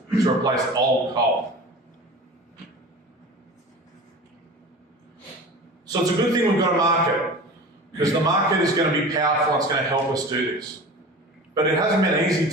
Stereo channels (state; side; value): normal; both; correlation 0.36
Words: to replace old coal. So it's a good thing we've got a market, because the market is going to be powerful and it's going to help us do this. But it hasn't been easy